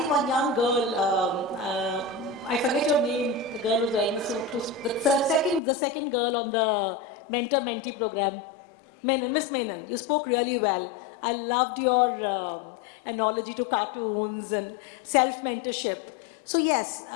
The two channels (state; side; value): drops out; right; at 5.6 s